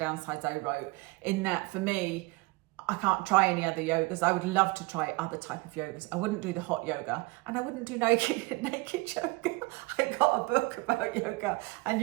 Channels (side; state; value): left; quieter; 24.3 dB